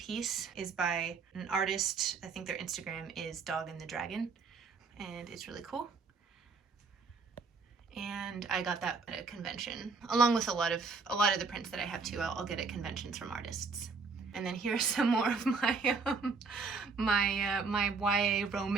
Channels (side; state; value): left; quieter; 4.6 dB